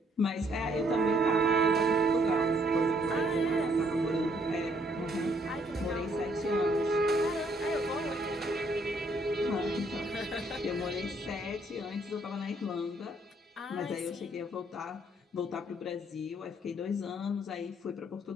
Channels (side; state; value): both; normal; correlation 0.67